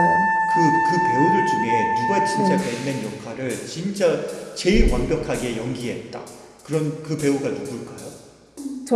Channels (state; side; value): identical; both; correlation 1.00